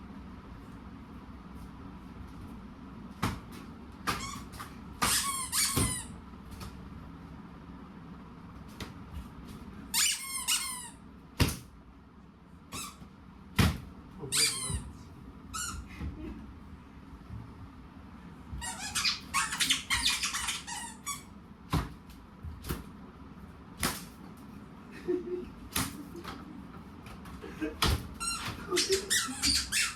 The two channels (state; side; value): identical; both; correlation 1.00